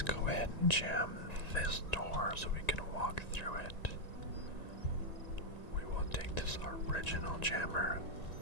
go ahead and jam this door so we can walk through it. We will take this original jammer.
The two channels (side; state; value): right; late; 1.9 ms